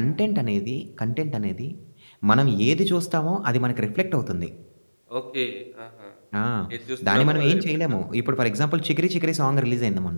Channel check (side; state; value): both; inverted; correlation -1.00